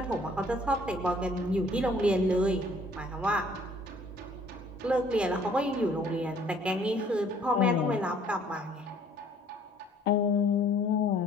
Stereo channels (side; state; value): both; normal; correlation 0.58